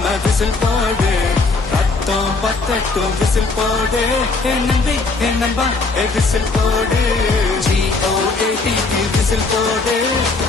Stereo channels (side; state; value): right; quieter; 3.8 dB